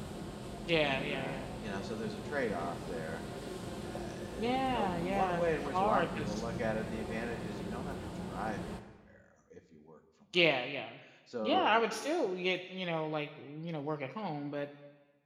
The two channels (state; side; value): identical; both; correlation 1.00